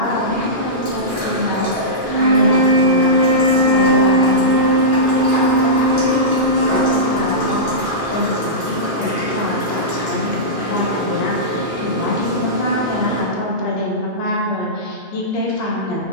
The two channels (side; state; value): both; normal; correlation -0.15